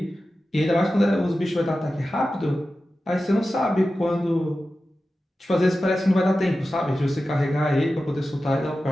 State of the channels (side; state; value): both; normal; correlation 0.93